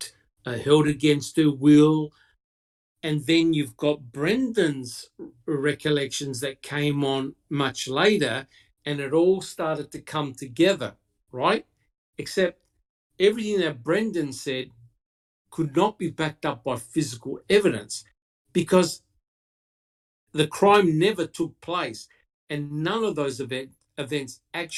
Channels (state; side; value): identical; both; correlation 1.00